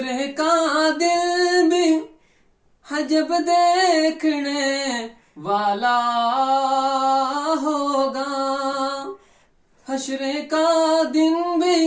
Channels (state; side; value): identical; both; correlation 1.00